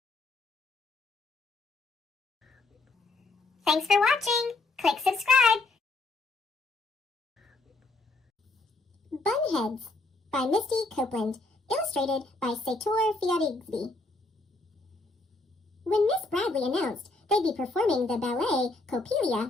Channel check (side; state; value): right; quieter; 3.1 dB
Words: Thanks for watching. Click subscribe. Bunheads by Misty Copeland, illustrated by Sator Fiarigsby. When Miss Bradley announced they'd be performing the ballet